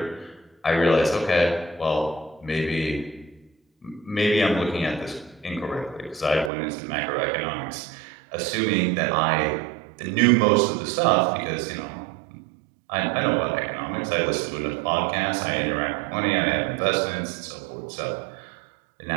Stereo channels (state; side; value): drops out; left; at 6.5 s